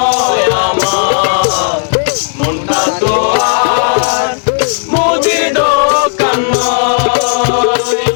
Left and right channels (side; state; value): right; silent; digital silence